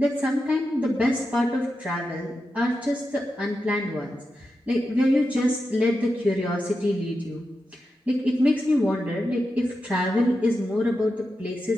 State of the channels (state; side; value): normal; both; correlation 0.89